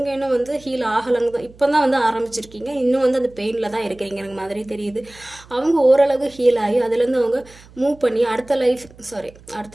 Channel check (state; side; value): noise; right; hum, 24 dB below the sound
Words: இன்னும் வந்து ஹீல் ஆகலைங்க தான், இப்போ தான் வந்து ஆரம்பிச்சிருக்கீங்க. இன்னும் வந்து அந்த பெயினில் தான் இருக்கிறீங்க எனக்கு மாதிரி தெரியுது. அவங்க ஓரளவு ஹீல் ஆகி அதுலேருந்து அவங்க மூவ் பண்ணி அடுத்த